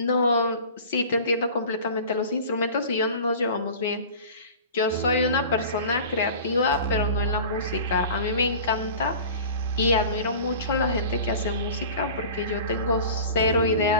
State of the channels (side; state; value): both; inverted; correlation -0.40